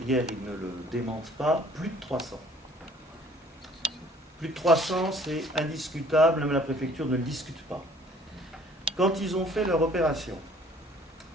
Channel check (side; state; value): both; normal; correlation 0.55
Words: hier, ils ne le démentent pas, plus de 300. Plus de 300, c'est indiscutable, même la préfecture ne le discute pas. Quand ils ont fait leur opération,